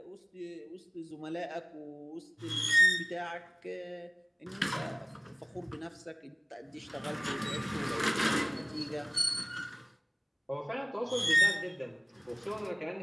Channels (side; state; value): both; identical; correlation 1.00